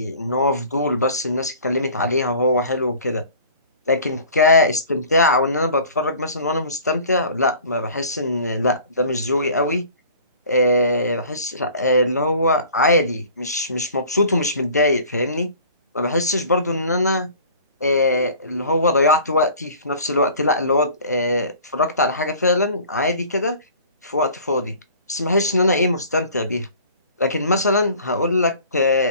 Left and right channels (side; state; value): both; inverted; correlation -0.47